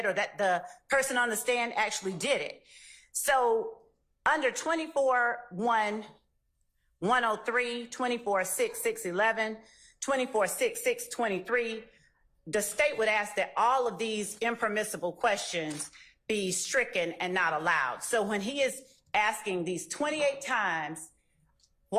or that the person on the stand actually did it. So under 24-1-103, 24-6-6-11, 24-6-6-23, the state would ask that all of these impermissible questions be stricken and not allowed. So when he is asking these 28 times,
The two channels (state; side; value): identical; both; correlation 1.00